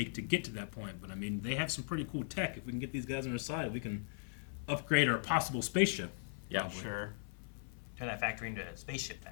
to get to that point. But I mean, they have some pretty cool tech. If we can get these guys on our side, we can upgrade our possible spaceship. Yeah, probably. Sure. Turn that factory into a spaceship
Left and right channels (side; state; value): right; silent; 52 dB below the other